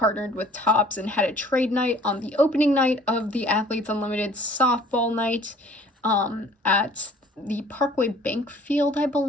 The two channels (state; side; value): normal; both; correlation 0.53